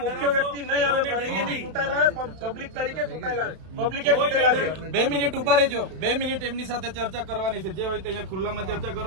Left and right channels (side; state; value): left; late; 32 ms